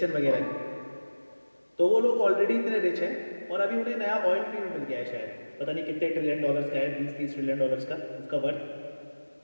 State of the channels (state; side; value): inverted; both; correlation -1.00